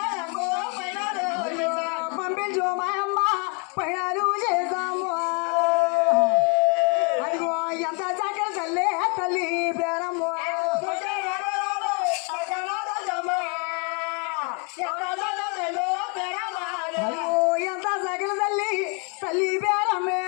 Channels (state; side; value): quieter; right; 36.2 dB